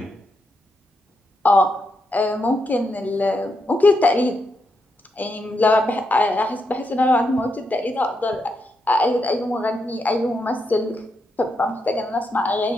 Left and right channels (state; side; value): normal; both; correlation 0.82